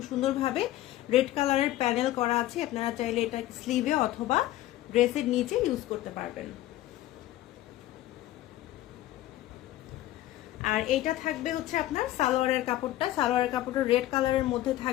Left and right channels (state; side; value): quieter; right; 14.9 dB